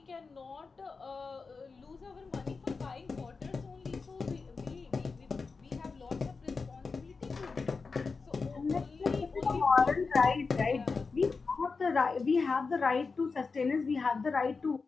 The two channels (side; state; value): right; quieter; 4.5 dB